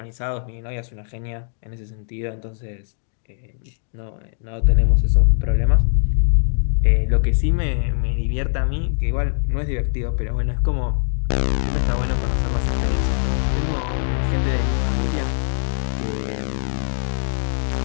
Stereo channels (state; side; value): silent; right; digital silence